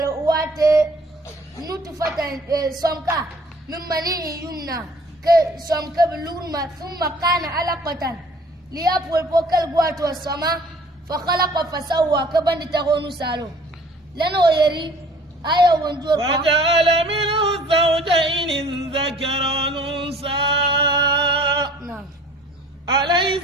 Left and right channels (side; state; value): both; normal; correlation 0.52